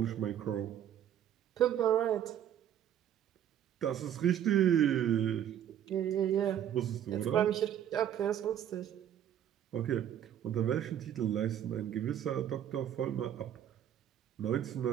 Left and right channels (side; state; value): left; quieter; 10.3 dB